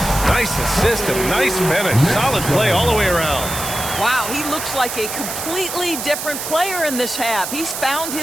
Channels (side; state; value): right; noise; hiss, 6 dB below the sound